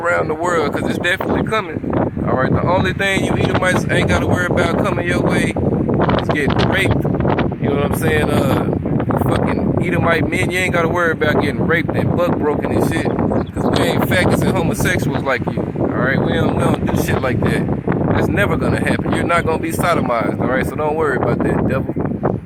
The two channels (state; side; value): identical; both; correlation 1.00